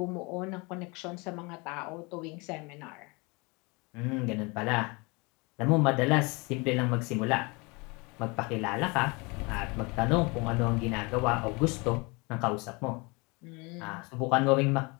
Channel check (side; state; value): right; quieter; 27.7 dB